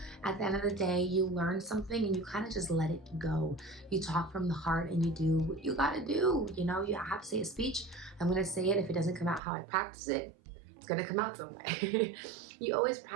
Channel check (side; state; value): left; drops out; at 9.4 s